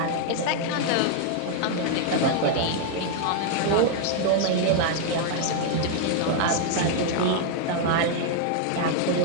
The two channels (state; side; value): different; both; correlation 0.00